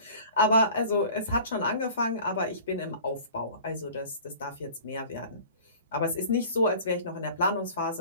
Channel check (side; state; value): both; inverted; correlation -0.44